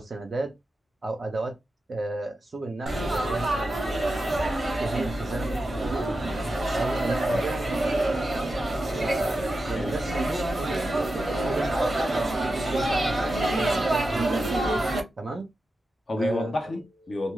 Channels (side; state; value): both; normal; correlation 0.90